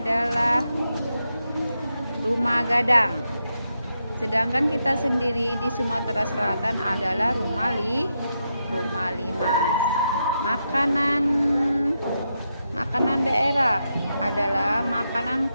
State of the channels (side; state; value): both; inverted; correlation -0.84